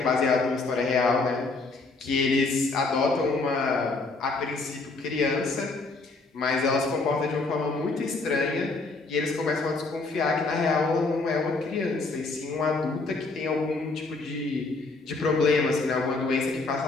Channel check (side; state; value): right; quieter; 3.6 dB